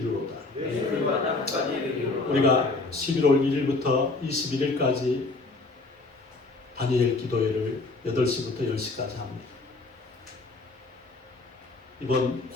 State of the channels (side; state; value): right; quieter; 3.4 dB